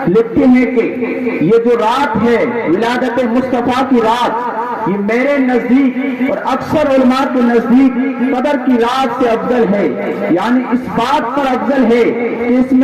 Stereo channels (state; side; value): identical; both; correlation 1.00